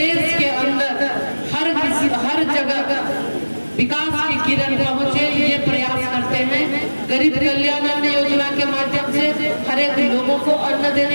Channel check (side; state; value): both; inverted; correlation -1.00